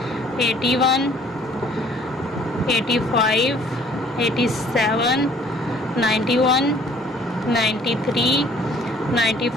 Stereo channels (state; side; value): normal; both; correlation 0.56